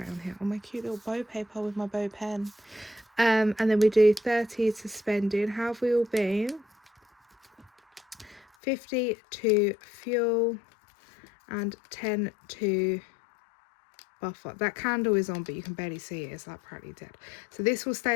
on here. Oh, my cute little bow paper with my bow pen. And then we do 30 to spending. How have we all been? 50 to fuel and 10 to buffer. That candle is on, but you can barely see it. It's like practically dead. So this will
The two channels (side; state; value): right; drops out; at 8.5 s